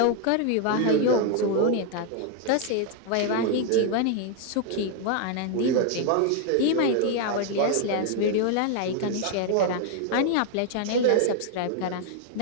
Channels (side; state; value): both; different; correlation 0.00